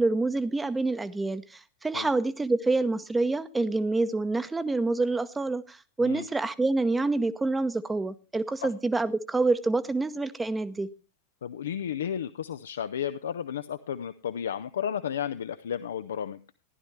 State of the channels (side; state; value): both; normal; correlation 0.76